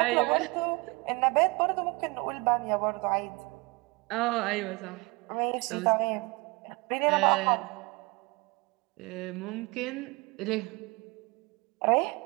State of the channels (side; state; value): left; quieter; 26.8 dB